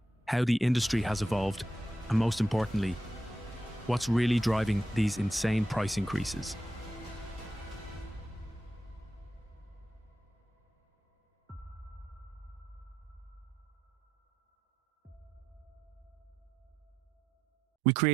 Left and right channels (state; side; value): normal; both; correlation 0.86